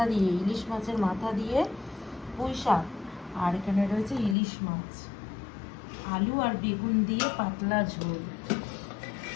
দিয়ে, ইলিশ মাছের মাথা দিয়ে পুঁই শাক। আর এখানে রয়েছে ইলিশ মাছ, আলু আর বেগুন দিয়ে পাতলা ঝোল।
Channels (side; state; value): right; drops out; at 4.4 s